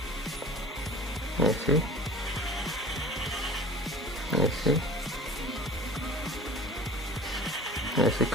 ऐसे ऐसे ऐसे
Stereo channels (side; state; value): both; normal; correlation 0.41